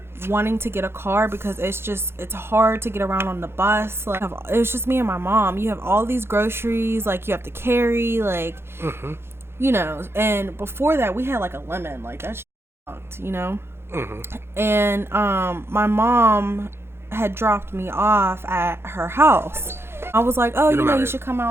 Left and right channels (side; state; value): left; late; 0.12 ms